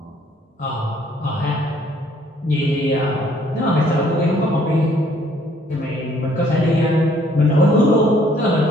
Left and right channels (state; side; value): normal; both; correlation 0.62